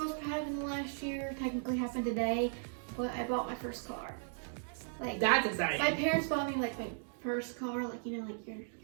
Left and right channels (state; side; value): silent; left; digital silence